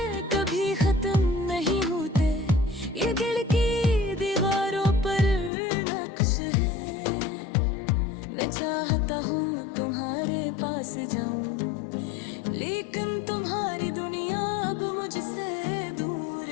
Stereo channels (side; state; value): right; drops out; at 5.5 s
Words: कभी खत्म नहीं होते, ये दिल की दीवारों पर नक्श है। मैं चाहता हूँ तुम्हारे पास जाऊं, लेकिन तुम्हारी दुनिया अब मुझसे दूर